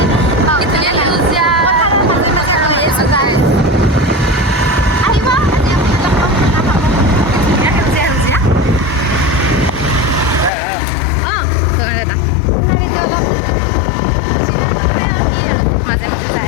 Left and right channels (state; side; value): drops out; right; at 10.5 s